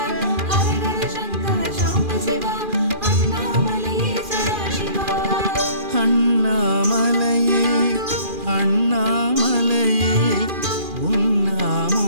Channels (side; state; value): left; late; 2.4 ms